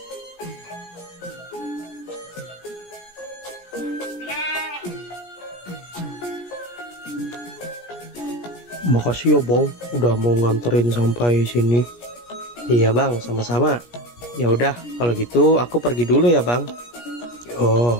Makasih ya bang, udah mau nganterin sampai sini. Iya Bang, sama-sama. Ya udah, kalau gitu aku pergi dulu ya Bang. Ya,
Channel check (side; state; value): right; late; 17 ms